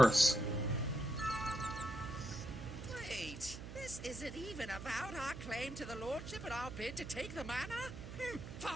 Wait, this isn't even about our claim to the lordship and our bid to take the manor?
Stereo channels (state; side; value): noise; right; hum, 10 dB below the sound